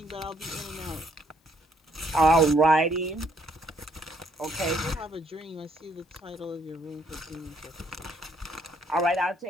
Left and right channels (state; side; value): normal; both; correlation 0.68